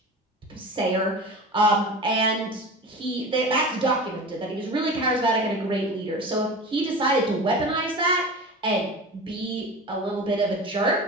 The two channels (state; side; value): normal; both; correlation 0.32